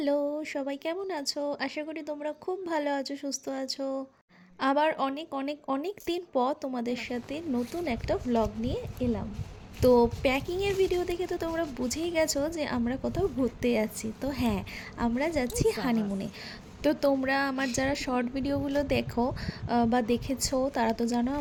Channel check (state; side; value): identical; both; correlation 1.00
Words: সবাই কেমন আছো? আশা করি তোমরা খুব ভালো আছো, সুস্থ আছো। আবার অনেক অনেক অনেক দিন পর তোমাদের সাথে নতুন একটা ভ্লগ নিয়ে এলাম। তো প্যাকিংয়ের ভিডিও দেখে তো তোমরা বুঝেই গেছো যে আমরা কোথাও ঘুরতে যাচ্ছি। তো হ্যাঁ, আমরা যাচ্ছি হানিমুনে। তো তোমরা আমার যারা শর্ট ভিডিওগুলো দেখো বা দেখেছো তারা তো জানো